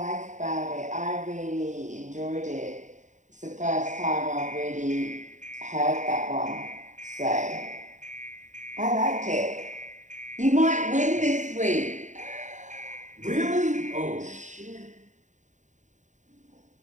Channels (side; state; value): left; late; 0.35 ms